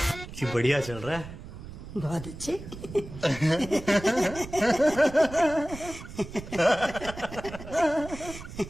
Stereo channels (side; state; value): right; noise; rumble, 13 dB below the sound